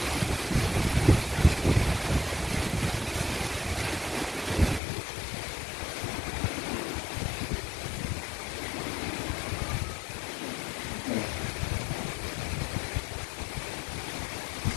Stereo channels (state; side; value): drops out; right; at 4.8 s